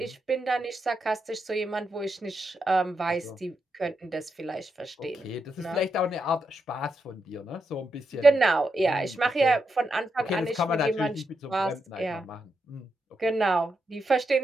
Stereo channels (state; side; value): normal; both; correlation 0.84